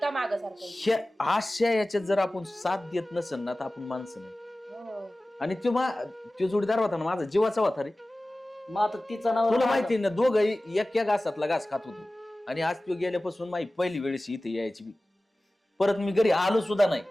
मागं सारखं. ह्या अशा याच्यात जर आपण साथ देत नसेल ना तर आपण माणसं नाही. आणि तो जोडीदार होता ना माझा जीवाचा होता रे. मग आता तिचा नाव तुला माहिती ना दोघं एक घासातला घास खात होतो. आणि आज तो गेल्यापासून माझी पहिली वेळेस इथे यायची बी. परत मी घरी आलो सुद्धा नाही.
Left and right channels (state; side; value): normal; both; correlation 0.97